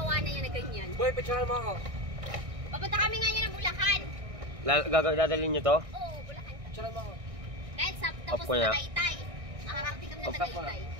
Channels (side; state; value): left; late; 1.6 ms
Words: na yan na ganyan. Boy, picturean mo ako. Papunta kami ngayon ng Bulacan. Dadalhin nyo to? Oo, Bulacan. Picturean mo ako. Dahil sa tapos Opo na. Tagaytay. Nakakarating kami ng Opo na. Tagaytay.